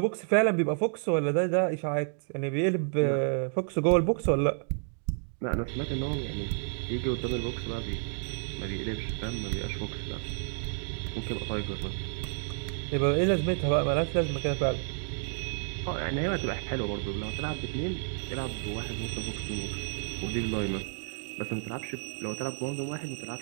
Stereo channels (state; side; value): silent; left; 57 dB below the other